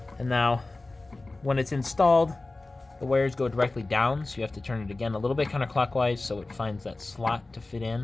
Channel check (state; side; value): quieter; right; 3.1 dB